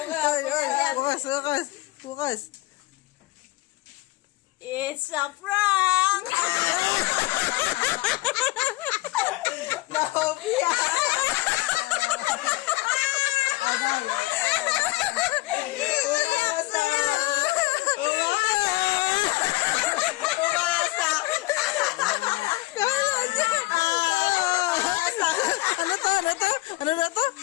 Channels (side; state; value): right; quieter; 20.0 dB